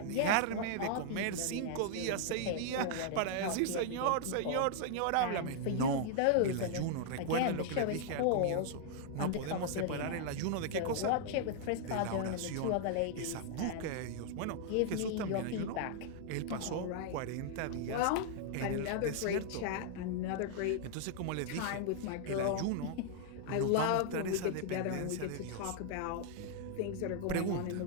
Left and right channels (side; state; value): both; different; correlation -0.01